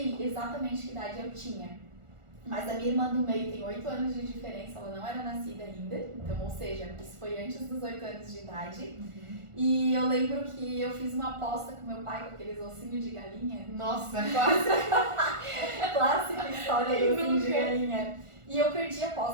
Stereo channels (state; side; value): late; left; 1.4 ms